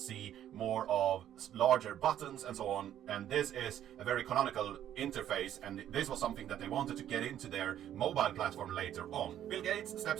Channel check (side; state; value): left; quieter; 11.1 dB